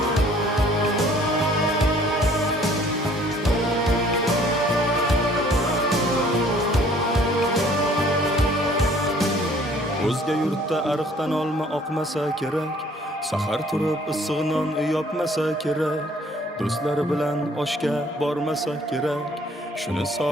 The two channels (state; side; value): normal; both; correlation 0.57